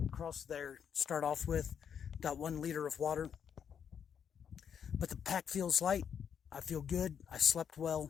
across there, start off with about 1 liter of water. But the pack feels light. I feel good. I slept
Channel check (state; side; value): quieter; right; 7.8 dB